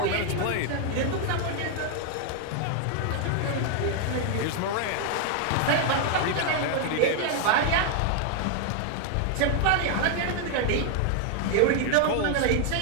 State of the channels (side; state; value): both; different; correlation 0.00